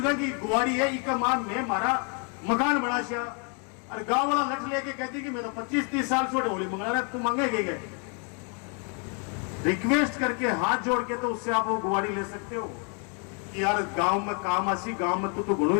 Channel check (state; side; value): quieter; right; 37.8 dB